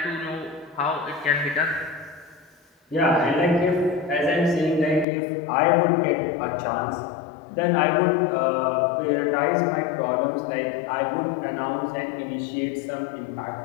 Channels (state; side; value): drops out; right; at 5.1 s